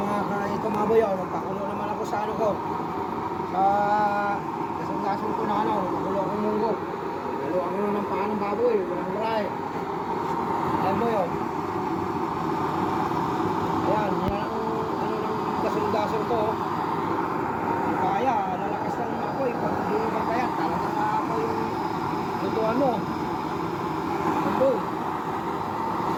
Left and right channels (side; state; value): both; identical; correlation 1.00